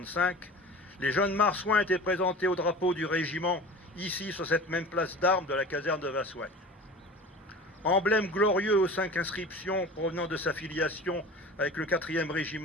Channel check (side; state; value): both; normal; correlation 0.37